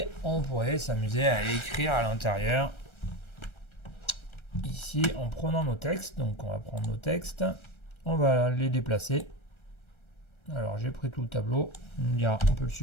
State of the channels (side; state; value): right; late; 1.3 ms